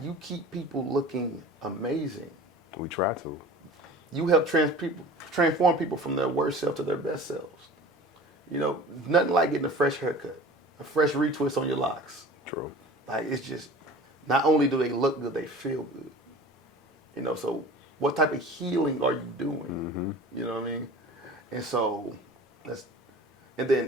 You keep people looking amazing. We try to. You help transform people from their worst self to their best selves. Nothing like getting a fresh haircut, a fresh retwist on your locks. True. Like, it's just, not only do they look good, they feel good. So what type of healing are you doing? Mm-hmm. You know what I mean? And so, and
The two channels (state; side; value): normal; both; correlation 0.41